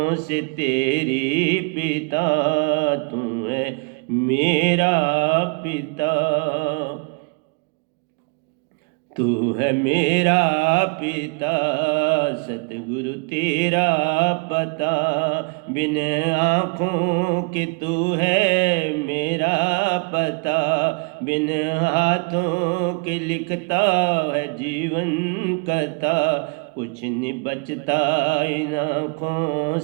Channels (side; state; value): left; quieter; 33.7 dB